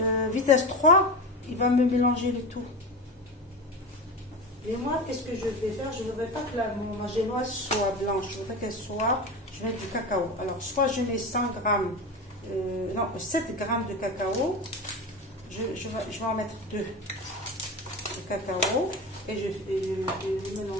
vitesse 3, il va me mélanger le tout. Et moi, qu'est-ce que je vais faire? Je ne voudrais pas que ma génoise soit blanche. Je voudrais qu'elle soit... Je vais mettre du cacao. Alors, soit je mets 100 grammes... non, 7 grammes de cacao. Je vais en mettre 2 de cacao. Et je vais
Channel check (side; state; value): both; normal; correlation 0.25